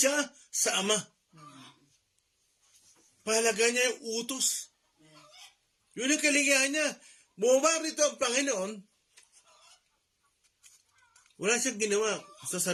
sa Ama. Pahalaga niya yung utos. Yun ang kaligayahan niya. Bumaba rito ang Panginoon, wala siyang ginawa sa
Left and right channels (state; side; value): identical; both; correlation 1.00